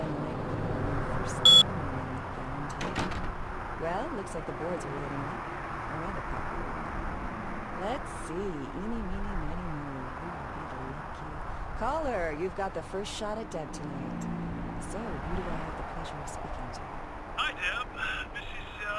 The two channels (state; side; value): identical; both; correlation 1.00